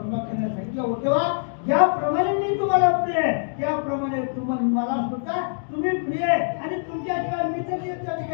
सांगितलं उद्धवा ज्याप्रमाणे मी तुम्हाला प्रिय आहे त्याप्रमाणे तुम्हाला मला सुद्धा तुम्ही प्रिय आहे आणि तुमच्याशिवाय मी तरी त्या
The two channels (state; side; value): silent; right; digital silence